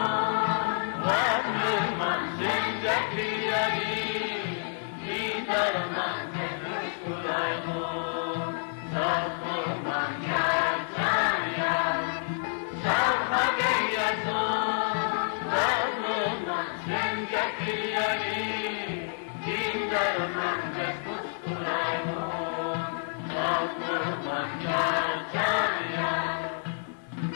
varlıman zincirli yari, Dinar'man temiz kulaymun, Safırman yar can yar. Kalma yazın, varlıman zincirli yari, Dinar'man temiz kulaymun.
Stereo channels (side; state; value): right; silent; digital silence